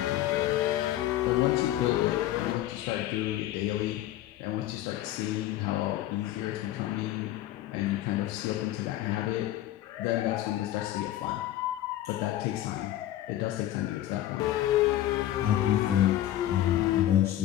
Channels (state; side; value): quieter; right; 13.6 dB